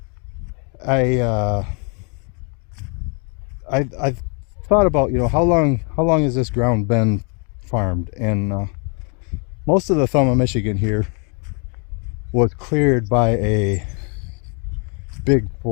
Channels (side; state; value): right; quieter; 37.2 dB